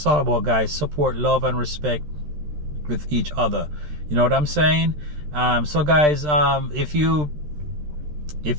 all about, guys. Support, love, and respect with each other. You know what I'm saying? So guys, if you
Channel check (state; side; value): late; left; 13 ms